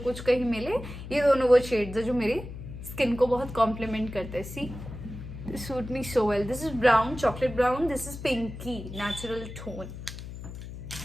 कुछ कहीं मिले. ये दोनों वो शेड्स है जो मेरी स्किन को बहुत कॉम्प्लीमेंट करते हैं. सी, suit me so well. This is brown, chocolate brown. This is pinky, natural tone.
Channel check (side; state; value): left; noise; hum, 11 dB below the sound